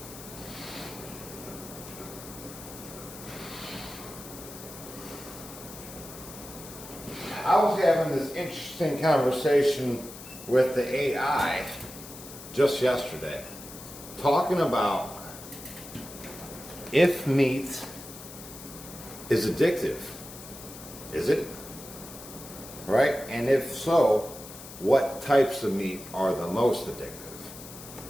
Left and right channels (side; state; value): left; noise; hiss, 14 dB below the sound